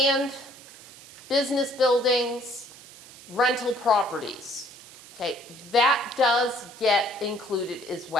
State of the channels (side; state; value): right; noise; hiss, 19 dB below the sound